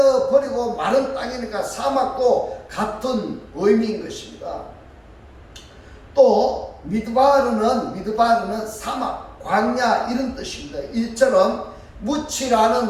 마른 땅이니까 사막도 같은 의미인 것입니다. 또 미드바르는 사막, 광야 이런 뜻입니다. 이처럼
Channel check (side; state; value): both; identical; correlation 1.00